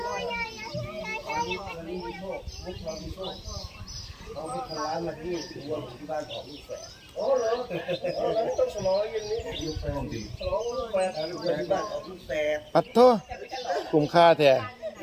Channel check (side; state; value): both; identical; correlation 1.00